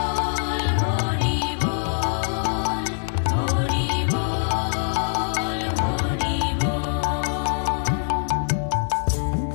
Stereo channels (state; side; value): silent; right; 63 dB below the other